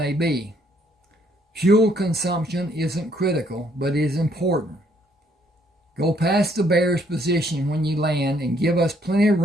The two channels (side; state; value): both; normal; correlation 0.68